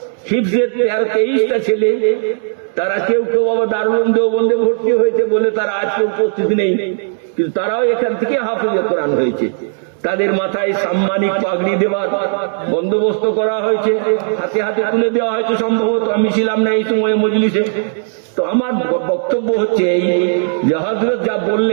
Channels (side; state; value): left; silent; 59 dB below the other